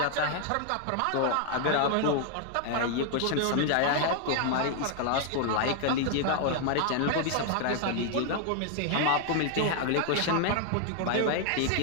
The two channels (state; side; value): different; both; correlation 0.00